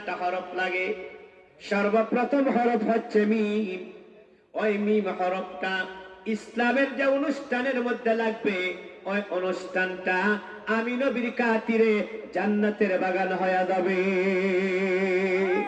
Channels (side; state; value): both; identical; correlation 1.00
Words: হরফ লাগে। সর্বপ্রথম হরফ হচ্ছে মিম। ওই মিম হরফটা ইসলামের যে অনুষ্ঠানের মধ্যে লাগবে, ওই অনুষ্ঠানটা আমি নবীর খাতিরে জান্নাতের বাগান হয়ে যাবে।